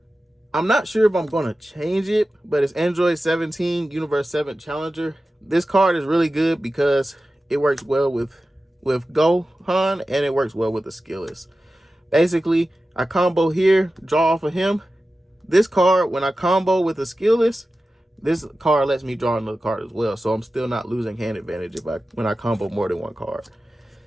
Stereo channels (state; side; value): normal; both; correlation 0.94